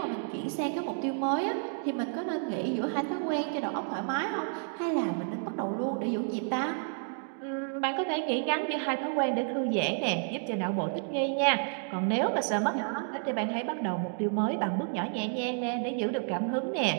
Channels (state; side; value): silent; left; 57 dB below the other